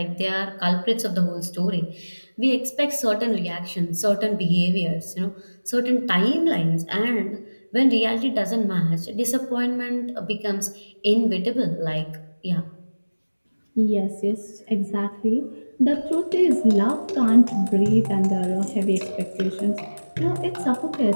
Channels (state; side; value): inverted; both; correlation -1.00